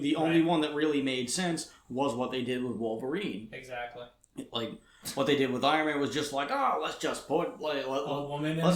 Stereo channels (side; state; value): both; identical; correlation 1.00